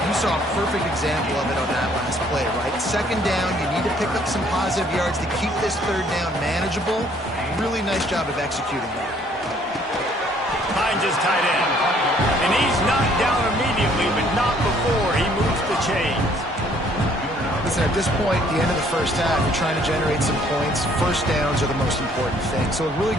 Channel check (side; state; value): both; normal; correlation 0.62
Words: You saw a perfect example of it on that last play, right? 2nd down, you need to pick up some positive yards to keep this 3rd down manageable. Really nice job of executing that. Finds his tight end. And he's knocked down immediately, but not before he moves the chains. Listen, at this point, the end of the first half, you're trying to generate some points. First downs are the most important thing. So a really